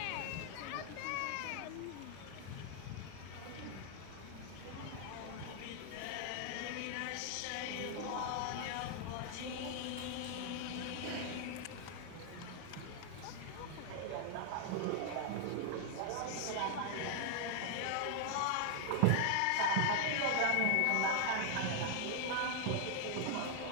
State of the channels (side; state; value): both; different; correlation 0.00